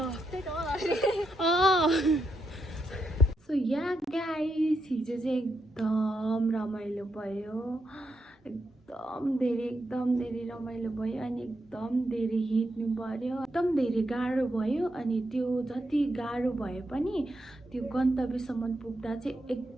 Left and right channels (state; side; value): normal; both; correlation 0.83